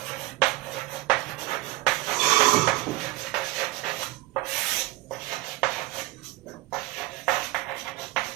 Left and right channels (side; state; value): left; quieter; 18.6 dB